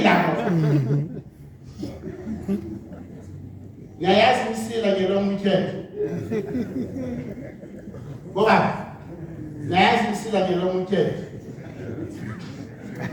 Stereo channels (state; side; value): identical; both; correlation 1.00